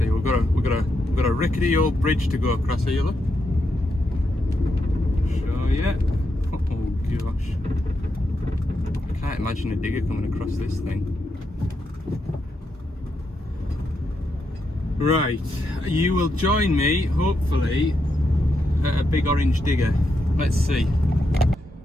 We've got a rickety old bridge to go across here, look. Show ya. Oh gosh. I can't imagine a digger coming across this thing. Right, you will join me, hopefully, at a big orange digger. Let's see.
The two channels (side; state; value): both; normal; correlation 0.83